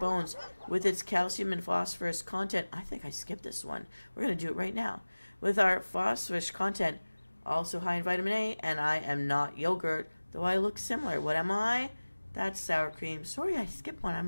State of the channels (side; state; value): both; inverted; correlation -1.00